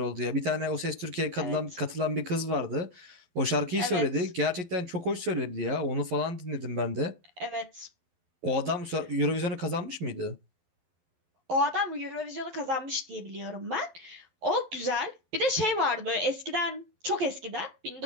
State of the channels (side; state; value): left; late; 12 ms